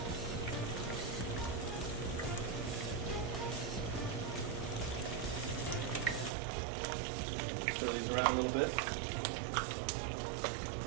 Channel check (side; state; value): left; drops out; at 6.3 s